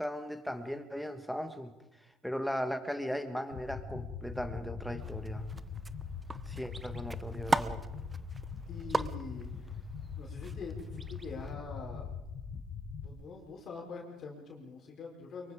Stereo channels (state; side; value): normal; both; correlation 0.83